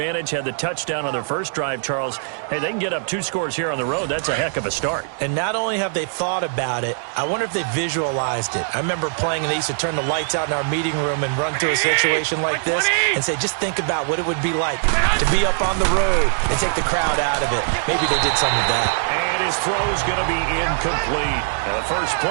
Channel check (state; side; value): silent; left; digital silence